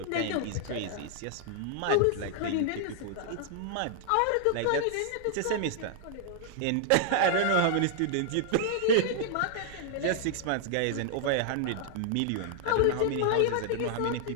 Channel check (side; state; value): both; different; correlation -0.01